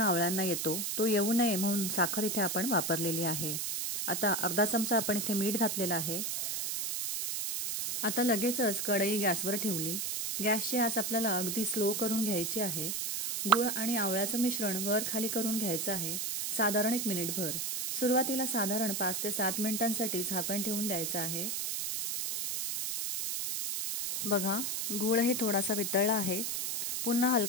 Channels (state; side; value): noise; right; hiss, 1 dB below the sound